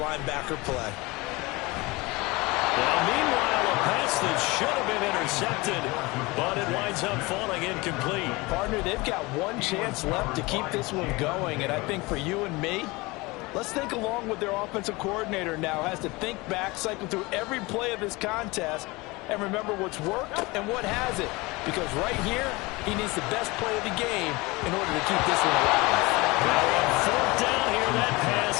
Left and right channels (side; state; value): right; quieter; 23.5 dB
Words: play. Well, meanwhile, a pass that should have been intercepted, but it winds up falling incomplete. Partner, they've got one chance left to keep this one going, and I think for you and me, let's think along with their offensive coordinator now. Has to think back, cycle through every play of this contest, and remember what's worked and what hasn't. Because right here, he needs the best play of the game in order to keep this one alive. Now on 4th down here, that pass